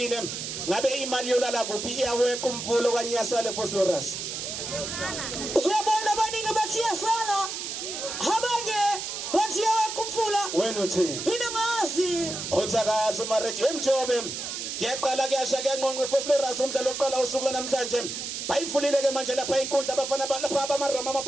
ngabe imali yolala kuphi iyawe kumvulo kanye iyasala eFosloras. Uyabona abaningi bathi iyasala, abanye bathi iyawe kumfula. Wena uthi Mina ngazi. uthakaza umareji emjobe ngiyaqala kuyasha kuyanqonqa eFosloras umdlalo oqala usuku namhlanje bayivulile ke manje lapha inkundla abafana lapha abamaroma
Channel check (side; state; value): right; noise; hiss, 5 dB below the sound